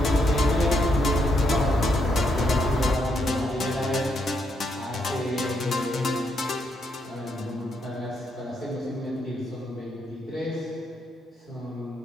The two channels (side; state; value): both; normal; correlation 0.77